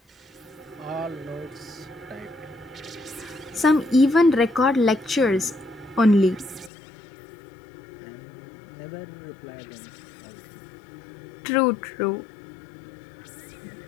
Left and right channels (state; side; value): drops out; right; at 6.7 s